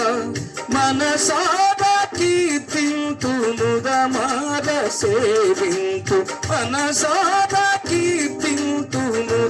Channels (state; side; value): identical; both; correlation 1.00